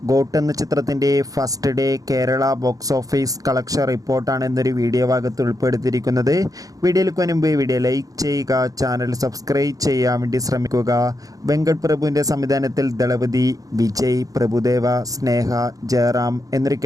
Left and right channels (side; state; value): left; late; 0.17 ms